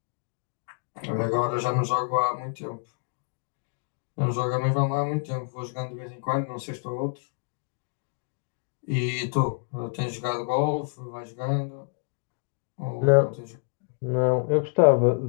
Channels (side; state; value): right; silent; 60 dB below the other